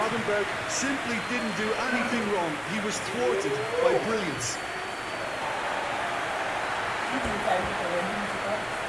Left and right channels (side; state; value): both; identical; correlation 1.00